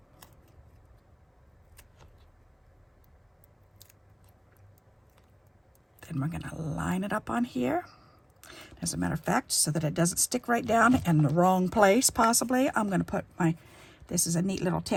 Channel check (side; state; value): both; identical; correlation 1.00